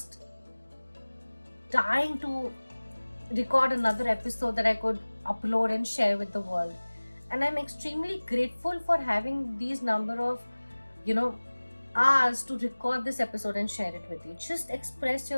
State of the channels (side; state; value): both; inverted; correlation -1.00